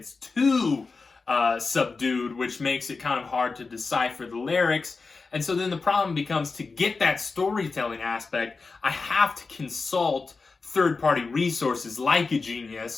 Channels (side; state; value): right; quieter; 4.3 dB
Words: too subdued, which makes it kind of hard to decipher the lyrics. And so then the problem becomes, to get that storytelling aspect, I have to consult third-party resources like a